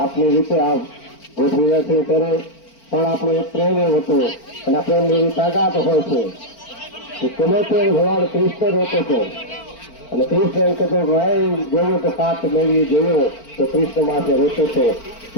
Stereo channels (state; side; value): late; right; 4.4 ms